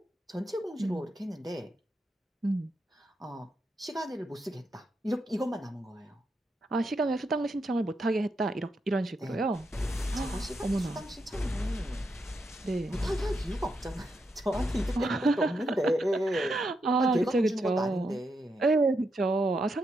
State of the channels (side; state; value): both; normal; correlation 0.83